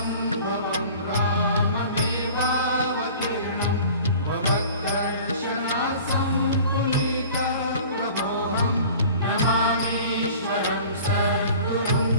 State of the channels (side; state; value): both; inverted; correlation -0.44